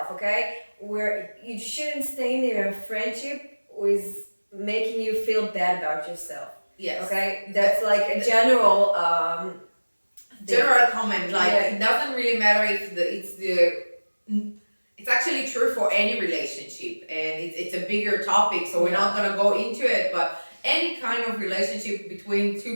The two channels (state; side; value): inverted; both; correlation -1.00